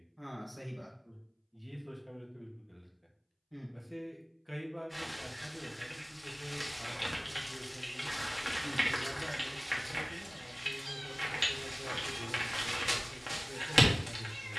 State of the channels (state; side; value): identical; both; correlation 1.00